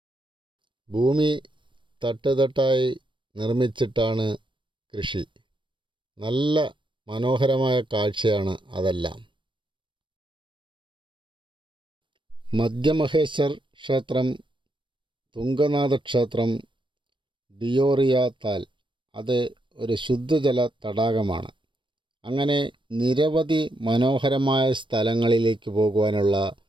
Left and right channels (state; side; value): late; left; 0.24 ms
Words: ഭൂമി തട്ടുതട്ടായി നിർമ്മിച്ചിട്ടാണ് കൃഷി. നല്ല മനോഹരമായ കാഴ്ചയാണ് അതെല്ലാം. മധ്യമഹേശ്വർ ക്ഷേത്രം, തുംഗനാഥ ക്ഷേത്രം, ഡിയോറിയ താൽ അത് ഒരു ശുദ്ധജല തടാകമാണ്. അങ്ങനെ നിരവധി മനോഹരമായ സ്ഥലങ്ങളിലേക്ക് പോകുവാനുള്ള